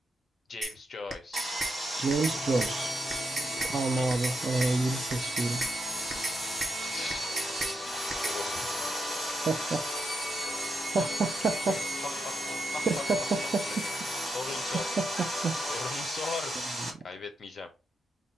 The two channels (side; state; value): both; normal; correlation 0.83